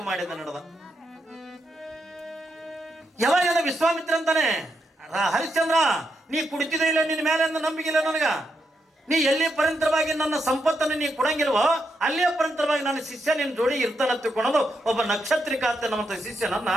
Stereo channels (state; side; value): normal; both; correlation 0.82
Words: ಮಾಡಿದ ನಡೆದ. ಯಾವಾಗ ವಿಶ್ವಾಮಿತ್ರ ಅಂತಾನೆ, ಹರಿಶ್ಚಂದ್ರ ನೀ ಕುಡಿತಿದ್ರೆ ಇಲ್ಲ, ನಿನ್ನ ಮೇಲೆ ನಂಬಿಕಿಲ್ಲ ನನಗ. ನೀ ಎಲ್ಲಿ ಪರಂತರವಾಗಿ ನನ್ನ ಸಂಪತ್ತನ್ನು ನೀ ಕೊಡಂಗಿಲ್ವೋ ಅಲ್ಲೇ ಪರಂತರವಾಗಿ ನನ್ನ ಶಿಷ್ಯ ನಿನ್ನ ಜೋಡಿ ಇರ್ತಾನ ತಿಳ್ಕೊಳ್ಳೋದು ಒಬ್ಬ ನಕ್ಷತ್ರಿಕ ಅಂತ ನಮ್ಮ ಶಿಷ್ಯನನ್ನ